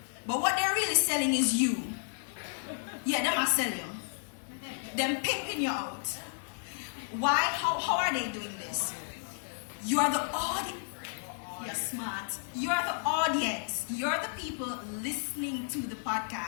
But what they're really selling is you. Yeah, them are selling you. Them pimping you out. Why? How are they doing this? You are the audience. You're smart. You are the audience. You're the people listening to the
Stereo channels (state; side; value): silent; right; 56 dB below the other